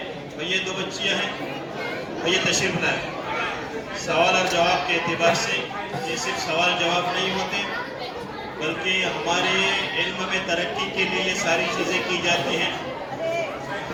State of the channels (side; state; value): both; identical; correlation 1.00